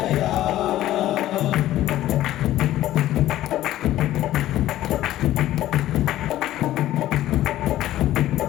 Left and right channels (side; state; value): right; quieter; 14.0 dB